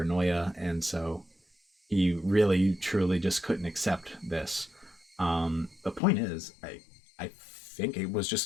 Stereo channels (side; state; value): right; drops out; at 6.0 s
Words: and so he really truly just couldn't accept this. The point is, I think it was